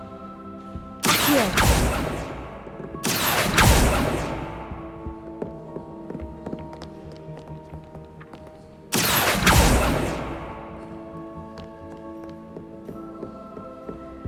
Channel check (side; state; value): both; identical; correlation 1.00